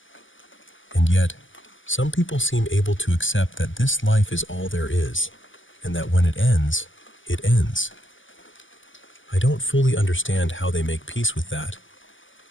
And yet, some people seem able to accept that this life is all there is, and that when it ends, it ends. I don't fully understand how they make peace with that,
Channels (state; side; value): late; right; 0.57 ms